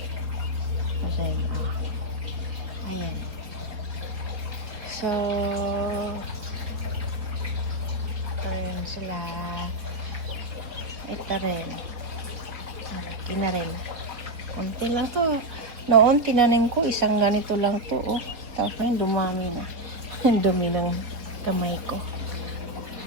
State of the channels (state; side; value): late; left; 4.4 ms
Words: Ayan. So, ito rin sila. Ito rin. Malaki na rin. Kunti lang to. Noon, tinanim ko, isang ganito lang to. Oh. Tapos ngayon, dumami na. Dumi ng kamay ko.